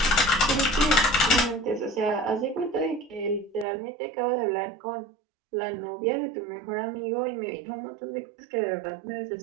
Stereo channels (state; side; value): drops out; left; at 3.7 s